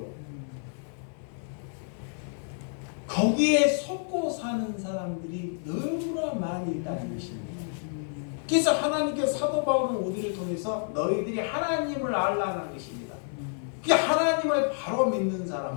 거기에 속고 사는 사람들이 너무나 많이 있다는 것입니다. 그래서 하나님께서 사도 바울은 우리를 통해서 너희들이 하나님을 알라는 것입니다. 그 하나님을 바로 믿는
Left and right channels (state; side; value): silent; right; 59 dB below the other